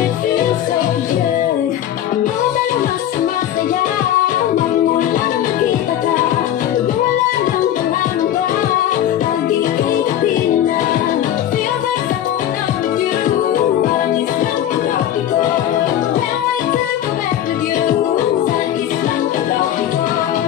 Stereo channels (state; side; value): quieter; right; 11.3 dB